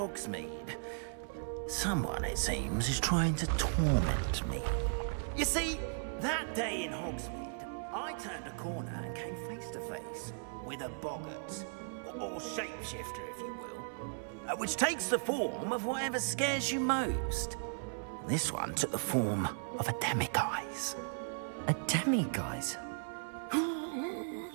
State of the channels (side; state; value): left; silent; 53 dB below the other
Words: Someone, it seems, is trying to torment me. You see, that day in Hogsmeade, I turned a corner and came face to face with a boggart, or shapeshifter, if you will, which takes the form of whatever scares you most. This one took the form of a demiguise. A demiguise?